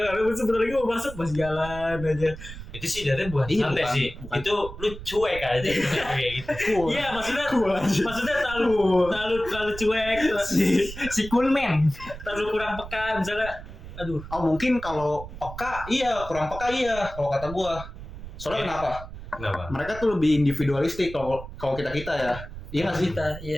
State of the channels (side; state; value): right; noise; rumble, 12 dB below the sound